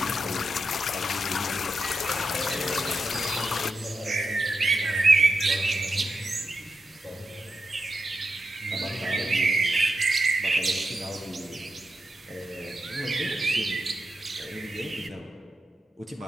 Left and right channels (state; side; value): normal; both; correlation 0.87